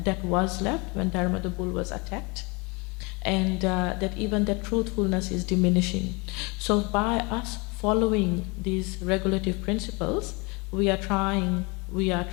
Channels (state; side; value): quieter; right; 28.5 dB